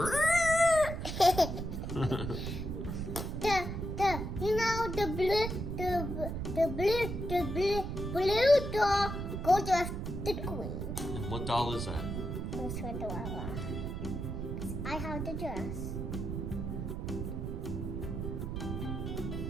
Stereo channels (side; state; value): right; noise; rumble, 4 dB below the sound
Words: You know the blue doll goes with the queen. And what doll is that? Goes with the Wawa. I have the dress.